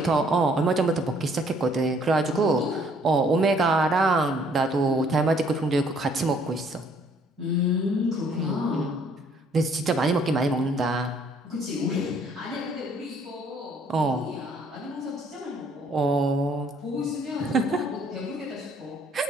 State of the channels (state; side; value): normal; both; correlation 0.63